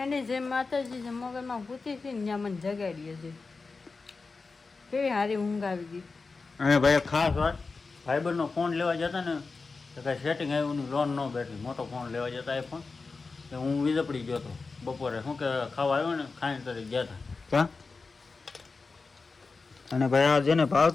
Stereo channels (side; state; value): right; quieter; 4.2 dB